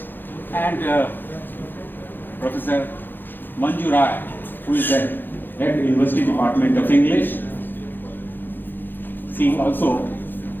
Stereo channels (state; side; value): late; right; 0.094 ms